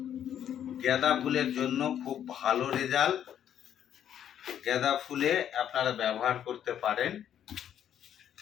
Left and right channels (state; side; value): quieter; right; 9.9 dB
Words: গাঁদা ফুলের জন্য খুব ভালো রেজাল্ট। গাঁদা ফুলে আপনারা ব্যবহার করতে পারেন